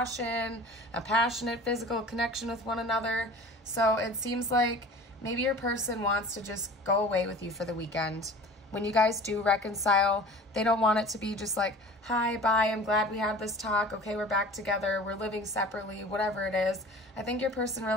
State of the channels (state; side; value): normal; both; correlation 0.41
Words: a passionate physical connection with one another. So it seems like maybe your person wants to just go away with you for the weekend. When you guys do reconcile, they don't want it to be just like, hi, bye, I'm glad we had this talk, okay, we're back together, we're living separately, whatever it is. I think your person